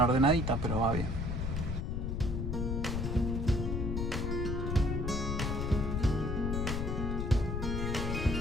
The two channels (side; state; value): left; noise; rumble, 1 dB below the sound